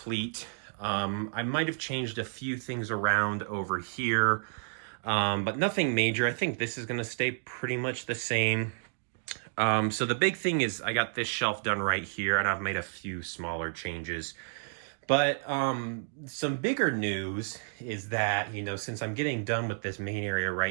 I might have changed a few things around over here. but nothing major. I think this is going to stay pretty much the same. So the big thing is I got this shelf done right here, and I've made a few smaller changes. But some bigger news is that, since I'm getting done with this main area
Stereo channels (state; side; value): silent; left; digital silence